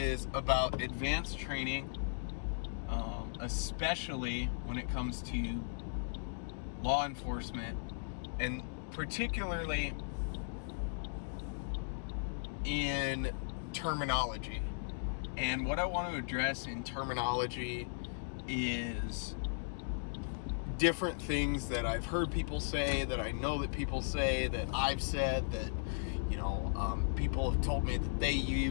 about advanced training, especially when it comes to law enforcement, and particularly in terminology. And what I want to address in terminology is different things that I've heard people say, that I know that people say, that I've said, that people have told me that they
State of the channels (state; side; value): silent; right; digital silence